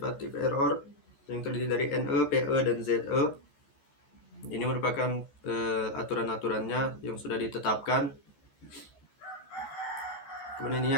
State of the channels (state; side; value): late; right; 14 ms